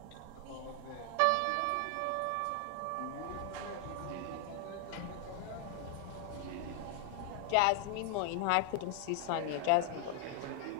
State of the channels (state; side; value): different; both; correlation 0.00